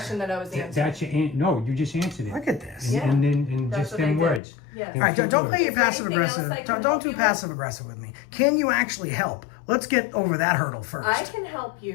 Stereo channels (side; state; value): right; drops out; at 4.4 s